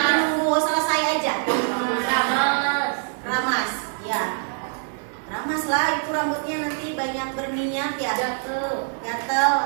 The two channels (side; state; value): left; silent; 56 dB below the other